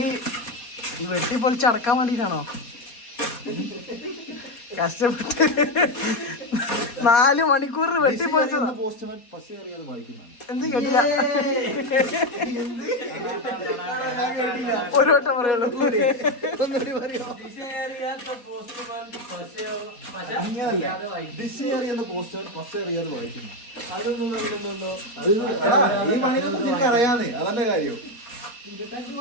വെട്ടി പൊളിച്ച് അടക്കാൻ വേണ്ടിട്ടാണോ കഷ്ടപ്പെട്ട് 4 മണിക്കൂർ വെട്ടി പൊളിച്ചതാ? എന്ത് കേട്ടില്ല, ഒരു വട്ടം പറയുള്ളൂ. അറിയാന്നേ, അതന്നെ കാര്യം.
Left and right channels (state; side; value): late; right; 4.2 ms